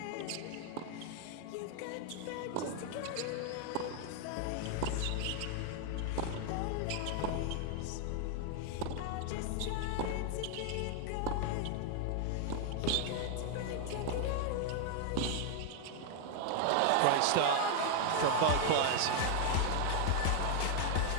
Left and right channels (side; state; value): both; different; correlation 0.00